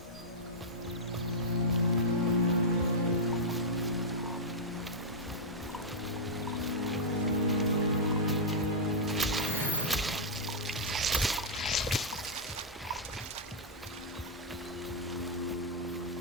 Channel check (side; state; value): both; normal; correlation -0.08